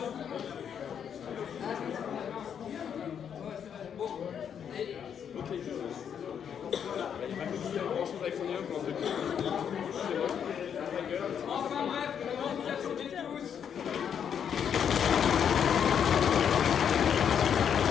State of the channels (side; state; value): right; quieter; 8.1 dB